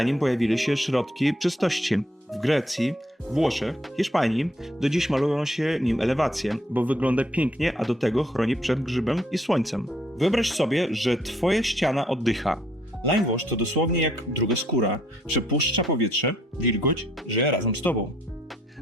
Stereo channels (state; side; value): normal; both; correlation 0.67